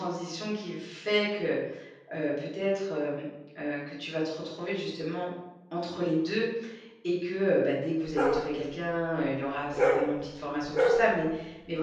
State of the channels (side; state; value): both; identical; correlation 1.00